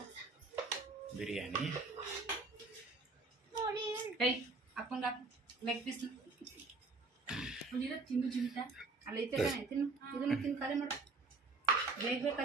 ಬಿರಿಯಾನಿ ಕೈ ಅಪ್ಪಂಗ ಲೆಗ್ ಪೀಸ್ ತಿನ್ನು ಚಿಂತ ಅಲ್ಲಿ ಐತೆ ತಾನೆ ತಿನ್ನು ಇದನ್ನು ತಿನ್ನು ಖಾಲಿ ಮಾಡು ಬೇಗ ಬೇಗ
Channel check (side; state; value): left; quieter; 3.8 dB